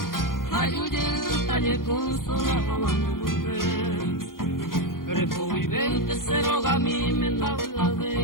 Ayuye el talle con sola mamá no volver. Repo vivente se roga a mí me da la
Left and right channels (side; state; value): right; late; 0.91 ms